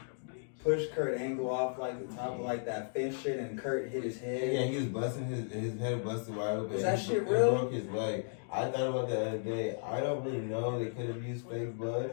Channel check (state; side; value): silent; right; digital silence